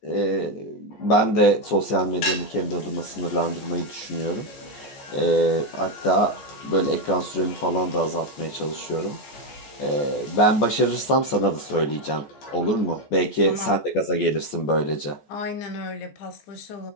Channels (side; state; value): right; late; 14 ms